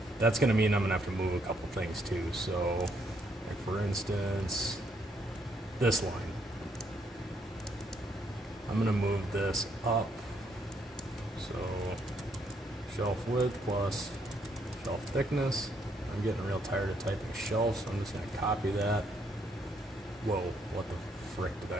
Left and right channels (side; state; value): both; normal; correlation 0.72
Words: that's going to mean I'm going to have to move a couple things too. So like for instance, this line, I'm going to move this up. So shelf width plus shelf thickness. I'm getting real tired of typing shelf, so I'm just going to copy that. Whoa, what the frick did